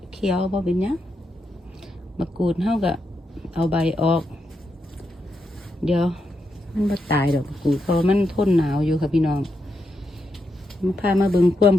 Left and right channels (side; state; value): both; normal; correlation 0.84